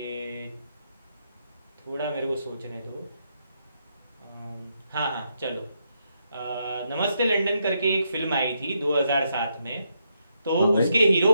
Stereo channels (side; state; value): both; inverted; correlation -0.80